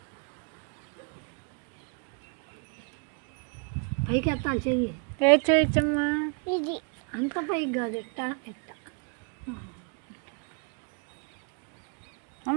పైకి ఎత్తాలి చెయ్యి. ఏ చేయొచ్చమ్మా? ఇది అంత పైకి కాదు, ఎట్ట ఎట్ట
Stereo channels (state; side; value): quieter; left; 39.2 dB